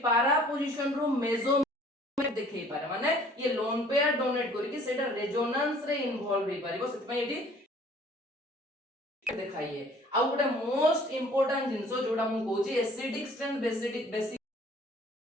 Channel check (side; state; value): both; normal; correlation 0.54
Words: पारा पोजीशन रो मेजो देखै पारे माने ये लोन पेयर डोनेट करी कि सेटा रेजोनेंस रे इन्वॉल्व होई पारिबो सेति पय एडी देखाइए आ गोटे मोस्ट इंपोर्टेंट जिंसो जोडा मु कहूची एसिडिक स्ट्रेंथ बेसिक